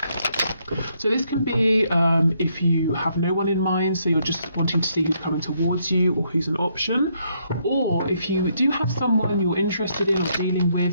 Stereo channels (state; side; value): inverted; both; correlation -0.73